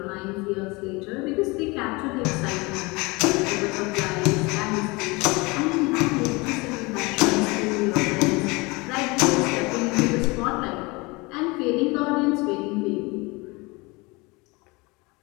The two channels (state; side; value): quieter; right; 25.3 dB